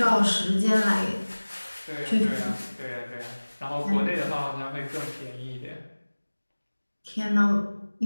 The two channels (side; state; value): both; inverted; correlation -1.00